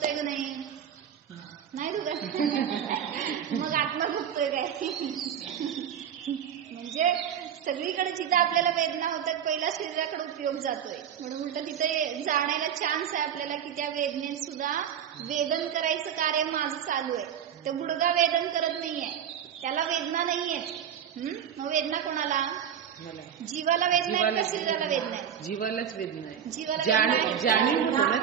का नाही दुखत, मग आत्मा दुखतोय काय. म्हणजे सगळीकडे जिथं आपल्याला वेदना होतात पहिला शरीराकडे उपयोग जातोय. म्हणून उलट तिथे जाण्याला चान्स आहे आपल्याला की त्या वेदनेत सुद्धा वेदन करायचं कार्य माझं चालू आहे. तर गुडघा वेदन करत नाहीये, त्याला वेदना नाहीये. मग वेदना कोणाला, जीवाला वेदना आहे का शरीराला वेदना आहे? जीवालाच वेदना आहे. जीवाला जाणीव होतं ना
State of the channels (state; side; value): quieter; left; 8.9 dB